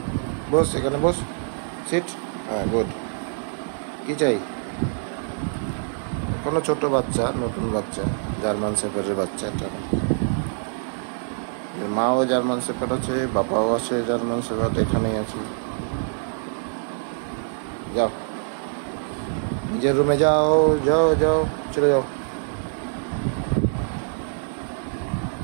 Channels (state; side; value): silent; left; 57 dB below the other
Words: বস এখানে বস সিট হ্যাঁ গুড কি চাই কোনো ছোট বাচ্চা নতুন বাচ্চা জার্মান শেফার্ডের বাচ্চা এটা এর মাও জার্মান শেফার্ড আছে বাবাও আছে জার্মান শেফার্ড এখানেই আছে যাও নিজের রুমে যাও যাও যাও চলে যাও